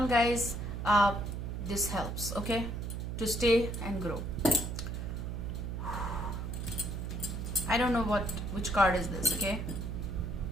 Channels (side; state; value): right; noise; hum, 4 dB below the sound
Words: guys. This helps, okay, to stay and grow. I don't know which card is this, okay?